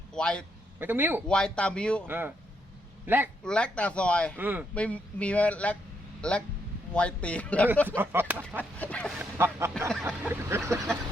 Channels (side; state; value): both; normal; correlation 0.77